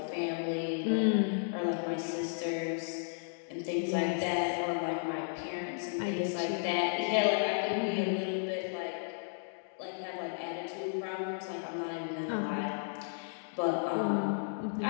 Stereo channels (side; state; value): right; silent; digital silence